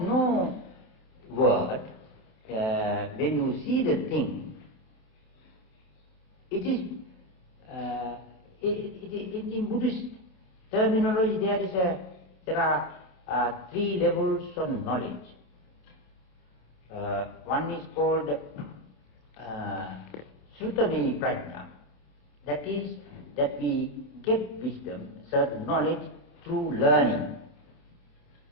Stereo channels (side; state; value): right; late; 27 ms